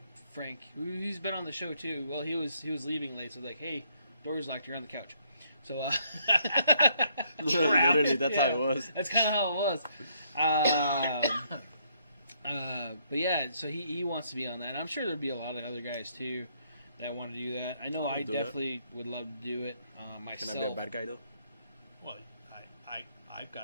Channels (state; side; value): inverted; both; correlation -0.70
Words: Frank, he's been on the show too. Well, he was leaving late, so like, hey, door's locked. You're on the couch. So literally, that's how it was. That's kind of how it was. But yeah, so he wants to be on that. And I'm sure there'll be a lot of other guys too that want to do that. I know I definitely would love to do it myself. Can I be a bad guy though?